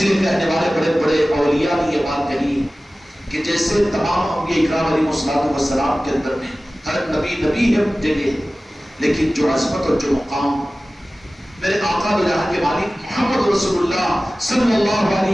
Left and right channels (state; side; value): normal; both; correlation 0.97